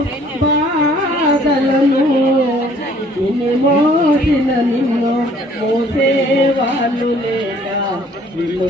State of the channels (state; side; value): normal; both; correlation 0.58